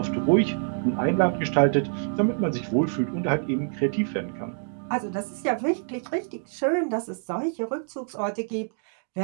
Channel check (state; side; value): silent; left; digital silence